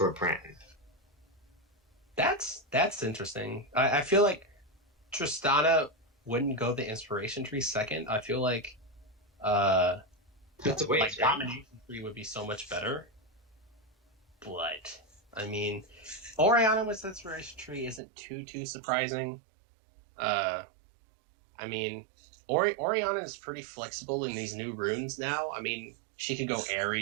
Pran. That's interesting. I feel like Tristana wouldn't go the inspiration tree second. I feel like that's a waste, right? Domination tree would be so much better. But I mean, Orianna with inspiration tree isn't too surprising. I mean, Orianna is pretty flexible in these new runes now. I mean, she could go Aerie,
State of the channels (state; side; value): drops out; left; at 18.0 s